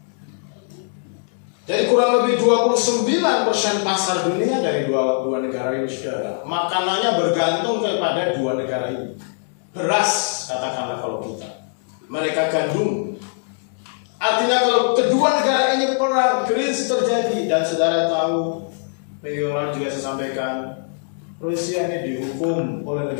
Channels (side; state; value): right; silent; 65 dB below the other